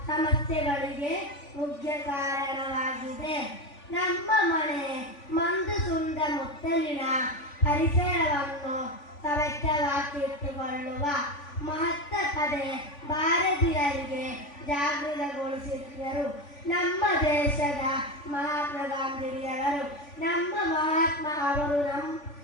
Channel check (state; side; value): late; right; 3.5 ms